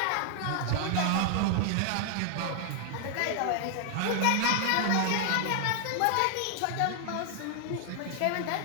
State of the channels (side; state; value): both; different; correlation 0.00